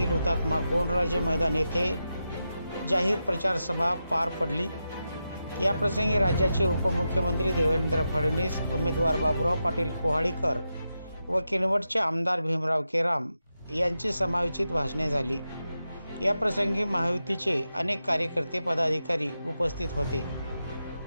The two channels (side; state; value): both; inverted; correlation -0.89